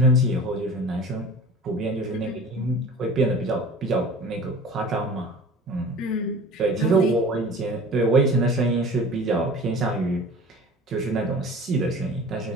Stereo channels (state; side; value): normal; both; correlation 0.41